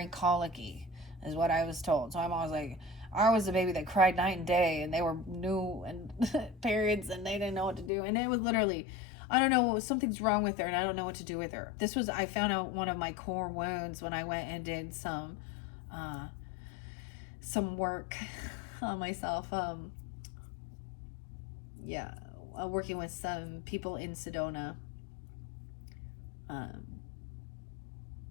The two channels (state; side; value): drops out; right; at 7.9 s